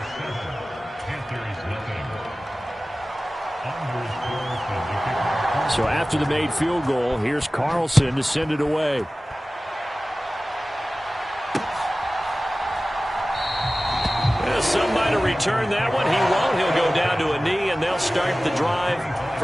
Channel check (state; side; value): normal; both; correlation 0.97